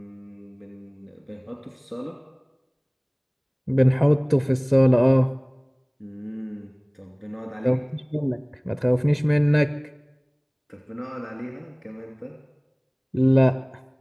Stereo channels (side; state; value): both; identical; correlation 1.00